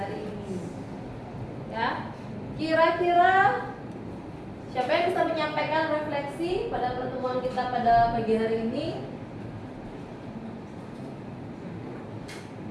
ini. Ya. Kira-kira siapa yang bisa menyampaikan refleksi pada pertemuan kita pada pagi hari ini?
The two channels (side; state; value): both; identical; correlation 1.00